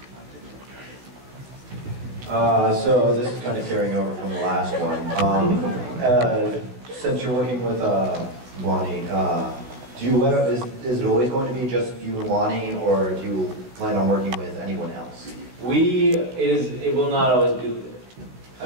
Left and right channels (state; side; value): late; left; 16 ms